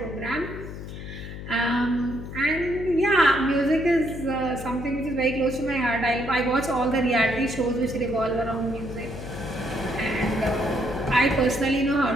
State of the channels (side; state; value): left; noise; hum, 10 dB below the sound